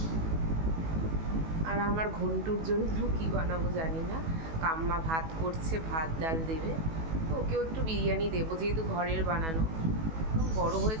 আর আমার ঘন্টুর জন্য কি বানাবো জানি না। কাম্মা ভাত করছে, ভাত ডাল দেবে, তো ওকেও একটু বিরিয়ানি দেবো যেহেতু ঘরের বানানো। বড়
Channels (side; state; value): left; late; 18 ms